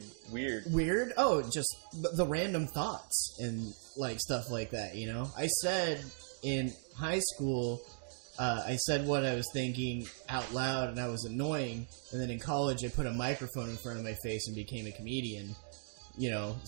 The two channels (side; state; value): left; silent; digital silence